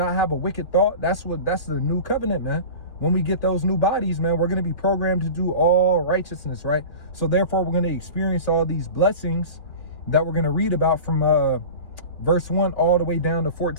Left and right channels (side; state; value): right; late; 2.0 ms